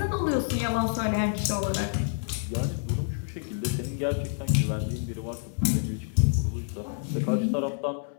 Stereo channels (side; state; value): right; silent; 59 dB below the other